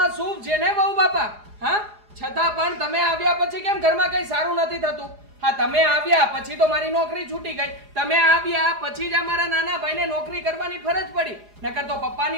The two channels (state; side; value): late; left; 4.8 ms